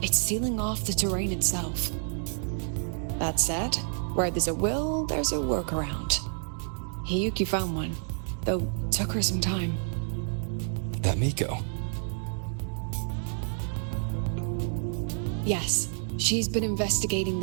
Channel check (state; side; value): silent; left; 59 dB below the other